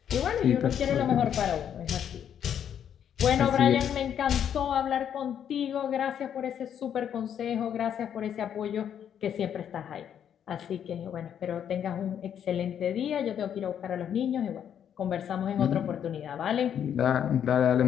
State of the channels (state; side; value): quieter; right; 9.0 dB